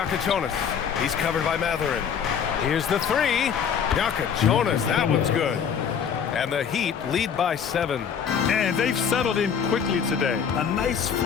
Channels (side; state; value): right; quieter; 7.4 dB